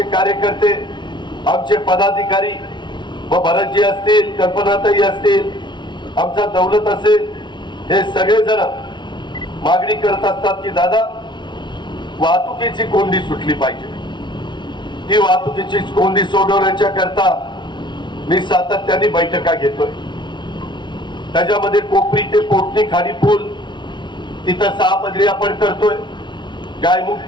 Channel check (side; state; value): right; late; 0.23 ms